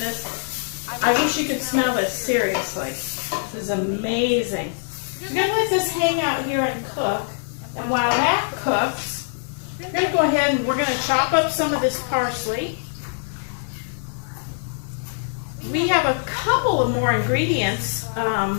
I wish you could smell this, seriously. This is amazing. We're going to let this hang out here and cook. And while that cooks, we're going to go ahead and we're going to chop up some of this parsley. We have a couple of more ingredients,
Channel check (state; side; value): silent; right; digital silence